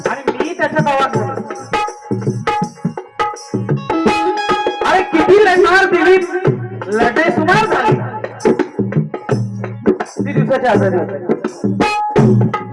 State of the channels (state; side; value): identical; both; correlation 1.00